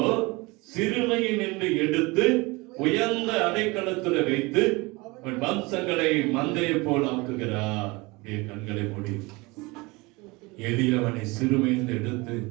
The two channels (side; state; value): left; quieter; 24.5 dB